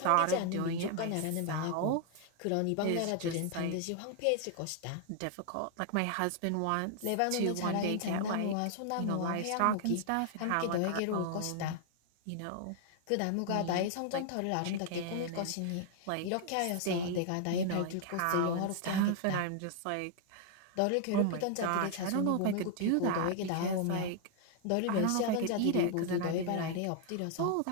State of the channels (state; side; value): different; both; correlation 0.00